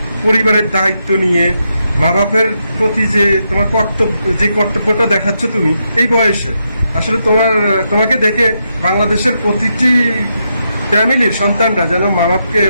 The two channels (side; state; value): both; inverted; correlation -0.82